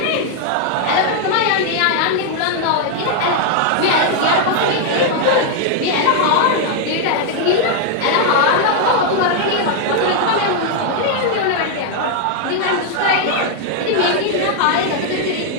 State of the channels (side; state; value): both; different; correlation 0.00